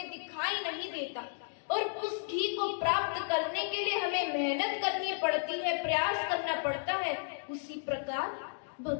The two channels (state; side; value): silent; right; digital silence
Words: दिखाई नहीं देता, और उस घी को प्राप्त करने के लिए हमें मेहनत करनी पड़ती है, प्रयास करना पड़ता है, उसी प्रकार